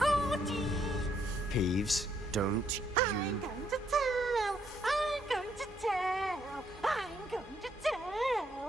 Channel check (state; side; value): normal; both; correlation 0.72